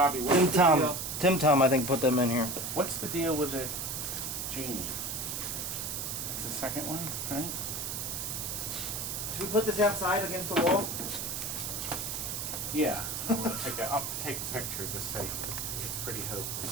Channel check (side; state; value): right; noise; hiss, 4 dB below the sound